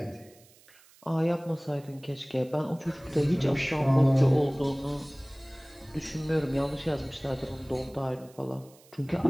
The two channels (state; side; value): noise; right; hiss, 27 dB below the sound